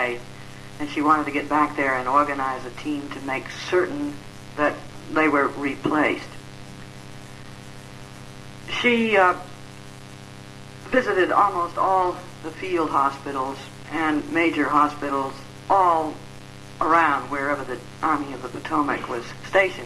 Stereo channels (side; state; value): both; identical; correlation 1.00